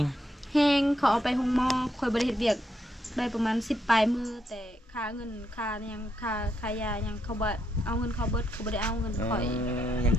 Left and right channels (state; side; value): normal; both; correlation 0.79